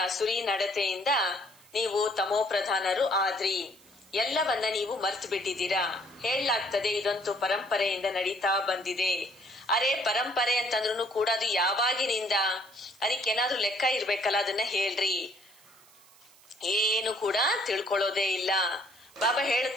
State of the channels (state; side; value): noise; right; hiss, 26 dB below the sound